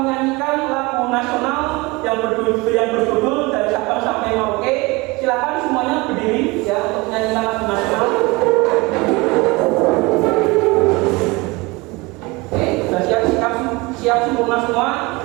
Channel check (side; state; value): left; quieter; 24.2 dB